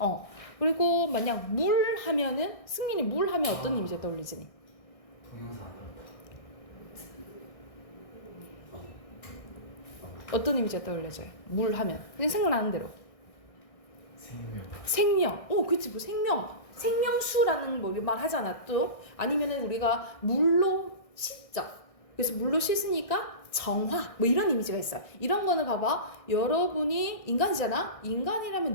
그리고 만약 물 하면은, 승민이 물 하면 어떤 이미지가 떠올리지? 동영상. 어떤 이미지가 떠올려져요? 물 하면. 그냥 생각나는 대로. 생명. 그치, 뭐 생명수라는 뭐 말 하잖아, 또. 아니면은 우리가 물로 씻죠. 그래서 물로 씻으니까 정화, 뭐 이런 이미지가 있어요. 이런 거는 봐봐. 여러분이 인간이잖아?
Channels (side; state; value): right; late; 1.6 ms